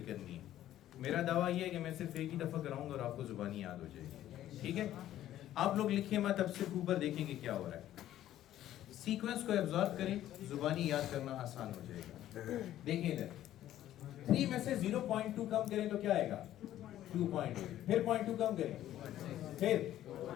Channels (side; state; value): right; quieter; 12.8 dB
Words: करनी है। मेरा दावा ये है कि मैं सिर्फ एक ही दफा कराऊंगा और आपको जुबानी याद हो जाएगी, ठीक है। आप लोग लिखिए मत, अब सिर्फ ऊपर देखेंगे क्या हो रहा है। सीक्वेंस को एब्जॉर्ब करें, जुबानी याद करना आसान हो जाएगा। देखिए इधर 3 में से 0.2 कम करें तो क्या आएगा 2.8, फिर 0.2 कम करें, फिर